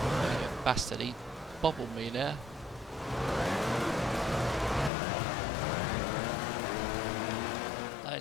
Bastard, he bobbled me there.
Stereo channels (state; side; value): drops out; right; at 4.9 s